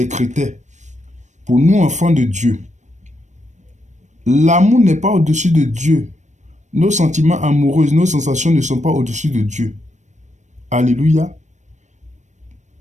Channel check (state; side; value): late; left; 0.34 ms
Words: critères pour nous, enfants de Dieu. L'amour n'est pas au-dessus de Dieu. Nos sentiments amoureux, nos sensations ne sont pas au-dessus de Dieu. Alléluia.